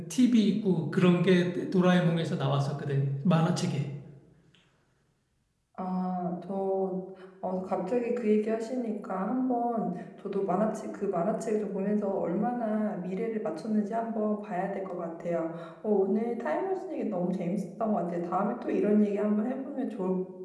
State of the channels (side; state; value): both; identical; correlation 1.00